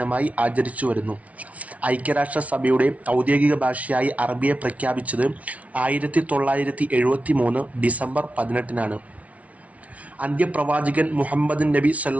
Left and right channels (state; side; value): late; left; 0.067 ms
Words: ആചരിച്ചു വരുന്നു. ഐക്യരാഷ്ട്രസഭയുടെ ഔദ്യോഗിക ഭാഷയായി അറബിയെ പ്രഖ്യാപിച്ചത് 1973 ഡിസംബർ 18 അന്ത്യപ്രവാചകൻ മുഹമ്മദ് നബി